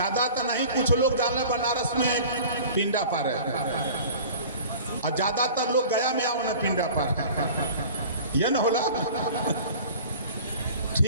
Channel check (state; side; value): inverted; both; correlation -0.42